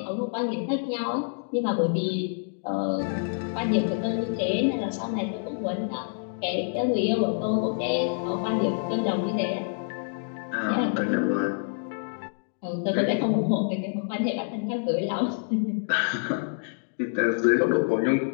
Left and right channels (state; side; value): silent; right; digital silence